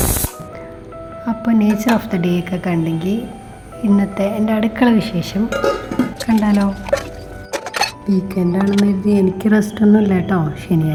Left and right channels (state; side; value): identical; both; correlation 1.00